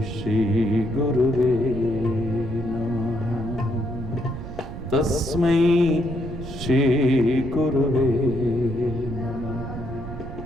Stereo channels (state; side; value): noise; right; rumble, 9 dB below the sound